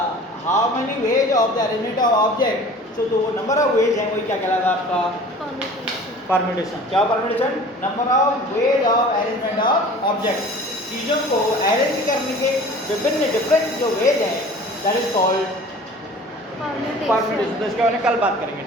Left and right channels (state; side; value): normal; both; correlation 0.44